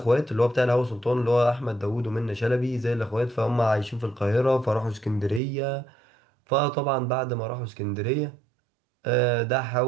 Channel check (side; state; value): left; drops out; at 5.4 s